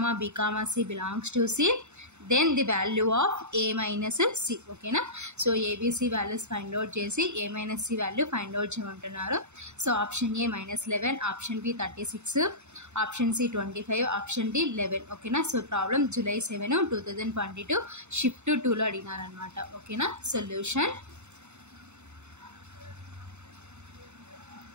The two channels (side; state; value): left; late; 0.82 ms